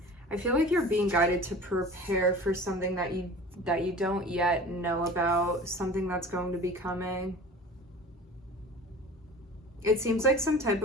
I feel like you're being guided to prepare for something that you don't yet know about, something that's going to be coming. It seems like some type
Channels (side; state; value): both; normal; correlation 0.40